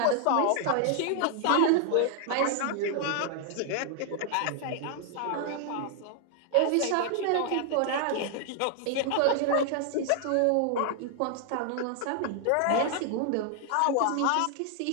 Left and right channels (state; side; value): different; both; correlation 0.00